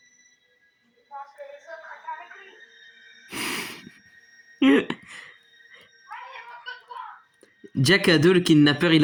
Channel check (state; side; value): identical; both; correlation 1.00